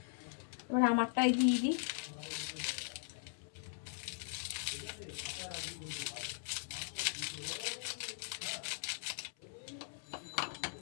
এবার আমারটাই দিয়ে দিই।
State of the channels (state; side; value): silent; right; 51 dB below the other